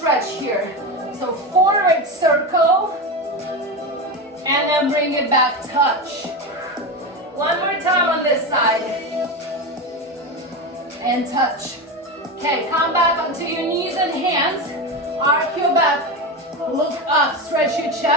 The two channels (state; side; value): normal; both; correlation 0.19